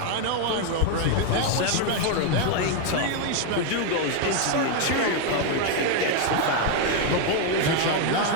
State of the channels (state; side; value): different; both; correlation 0.01